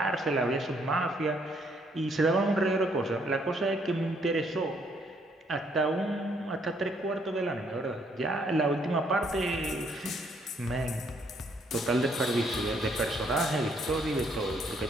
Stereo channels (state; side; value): normal; both; correlation 0.69